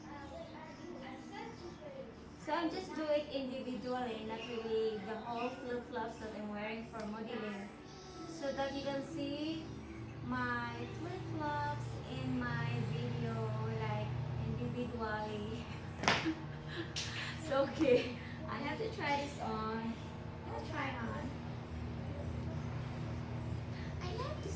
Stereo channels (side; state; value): both; identical; correlation 1.00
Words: So I'm just do it individually, not really the whole flip-flops that I'm wearing for modeling. So that you can see my flip-flops in my video like individually. So okay, I have to try this on. I'll try on. I like this